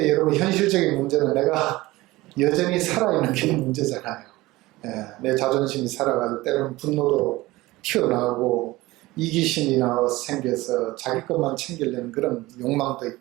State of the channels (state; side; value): quieter; left; 19.4 dB